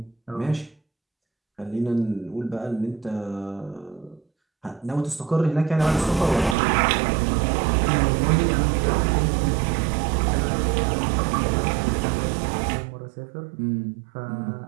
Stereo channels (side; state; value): left; drops out; at 6.6 s